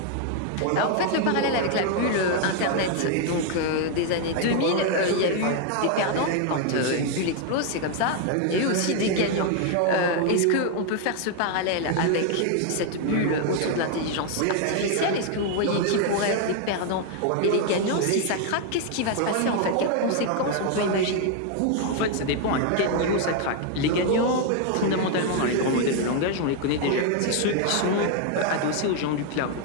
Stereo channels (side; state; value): both; different; correlation 0.00